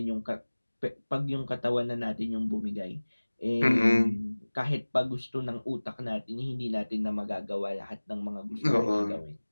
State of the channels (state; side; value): inverted; both; correlation -1.00